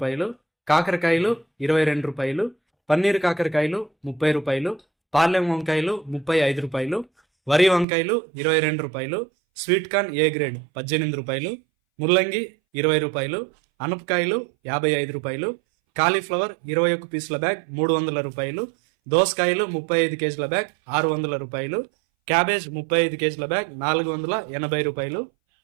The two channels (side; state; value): left; drops out; at 7.9 s